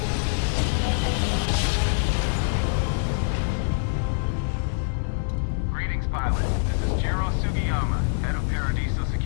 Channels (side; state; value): right; silent; digital silence